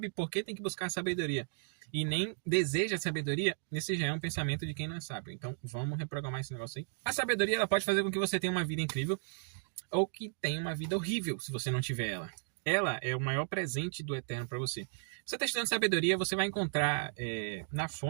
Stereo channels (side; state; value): left; silent; 55 dB below the other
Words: por que tem que buscar sabedoria e nem deseja sabedoria, esse já é um pensamento de quem não é sábio. Então vamos reprogramar esse negócio aí. A sabedoria ela pode fazer com que você tenha uma vida incrível ou que tenha uma vida horrível se você não tiver ela. Ela é o maior presente do Eterno para você. Se você está estudando sabedoria, você vai encontrar na